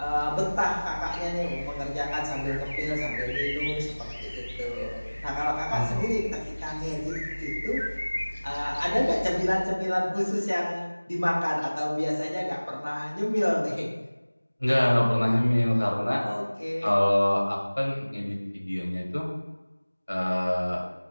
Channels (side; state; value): both; inverted; correlation -1.00